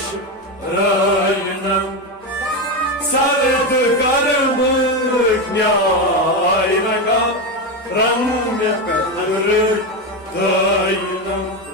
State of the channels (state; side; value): normal; both; correlation 0.13